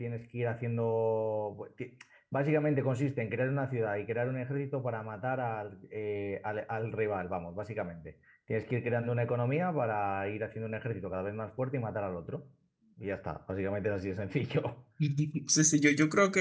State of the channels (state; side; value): identical; both; correlation 1.00